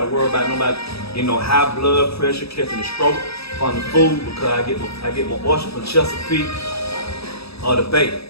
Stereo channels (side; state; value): right; late; 0.77 ms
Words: worry about nobody, you know, high blood pressure, catching a stroke from the food, because I get my oyster from Chesapeake or the bacon.